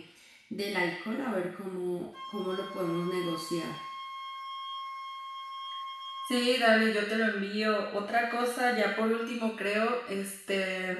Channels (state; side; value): identical; both; correlation 1.00